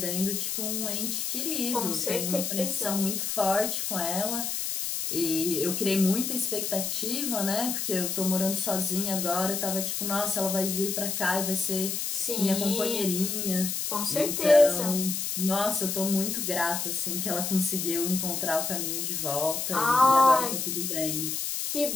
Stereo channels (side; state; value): left; noise; hiss, 2 dB below the sound